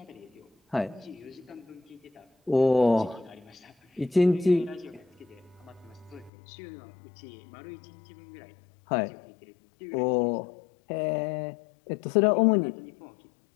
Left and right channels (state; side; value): drops out; right; at 6.3 s